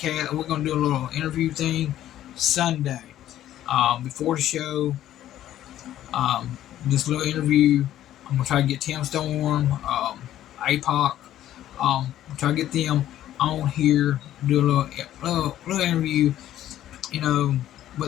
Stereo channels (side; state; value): right; quieter; 12.5 dB